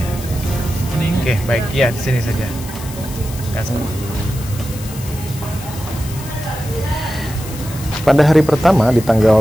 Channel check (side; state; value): left; noise; hiss, 14 dB below the sound